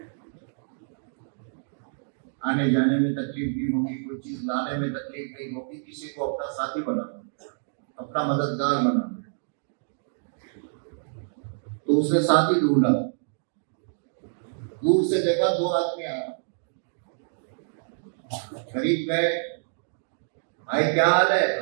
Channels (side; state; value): left; silent; digital silence